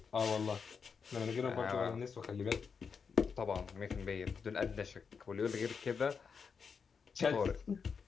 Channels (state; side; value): quieter; right; 5.9 dB